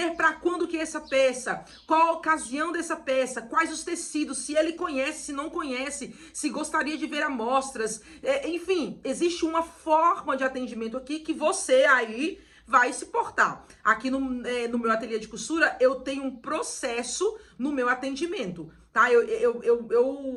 para quando que é essa peça, qual a ocasião dessa peça, quais os tecidos, se ele conhece, se não conhece, se gostaria de ver amostras, enfim, existe uma forma de atendimento aqui que você aí vai se portar. Aqui no meu ateliê de costura, eu tenho um processo no meu atendimento, tá?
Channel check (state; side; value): identical; both; correlation 1.00